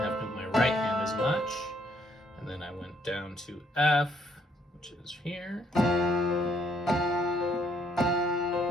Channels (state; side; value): normal; both; correlation 0.69